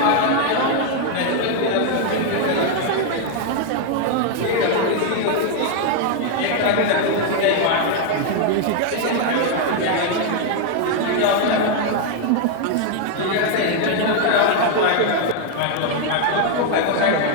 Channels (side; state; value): both; different; correlation 0.00